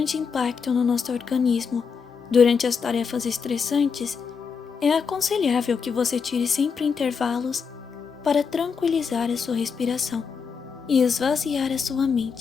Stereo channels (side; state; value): right; quieter; 5.9 dB